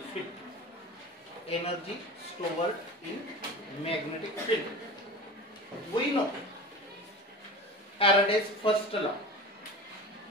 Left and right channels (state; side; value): normal; both; correlation 0.33